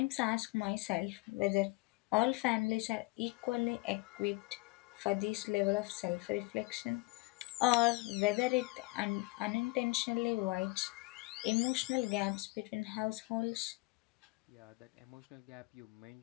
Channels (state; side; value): quieter; right; 25.2 dB